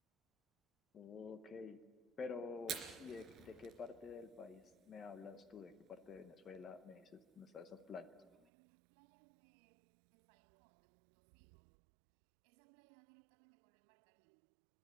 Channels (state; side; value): drops out; left; at 8.5 s